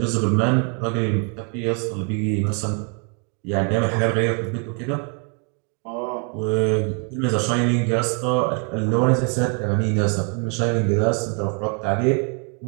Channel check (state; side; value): quieter; left; 38.8 dB